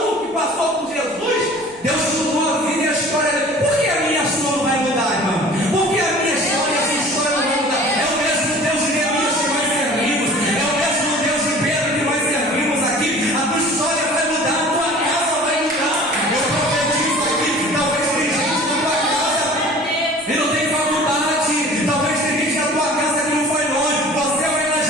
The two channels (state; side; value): noise; right; rumble, 27 dB below the sound